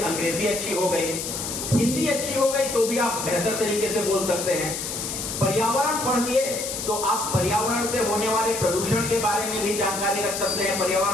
अच्छी हो गई, हिंदी अच्छी हो गई, तो भी आप बेहतर तरीके से बोल सकते हैं। पर्यावरण पढ़ लिए तो आप पर्यावरण से होने वाले प्रदूषण के बारे में भी जानकारी रख सकते हैं।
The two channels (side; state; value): left; noise; hiss, 5 dB below the sound